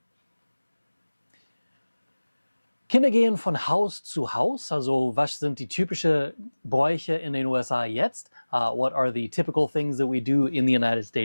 Kinder gehen von Haus zu Haus, also was sind die typischen Bräuche in den USA jetzt? What are the typical things that we do in the United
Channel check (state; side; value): inverted; both; correlation -1.00